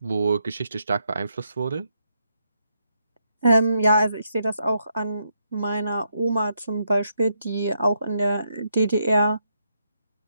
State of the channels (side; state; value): both; inverted; correlation -0.79